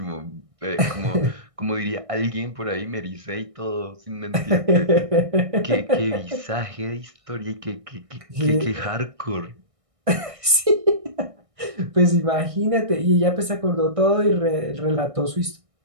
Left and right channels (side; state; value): left; late; 1.6 ms